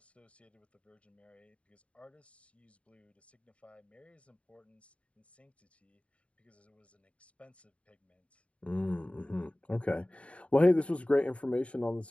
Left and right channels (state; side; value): late; right; 0.062 ms